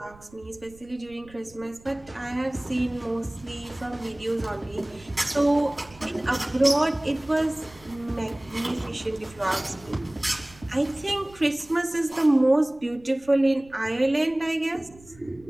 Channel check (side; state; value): right; noise; rumble, 24 dB below the sound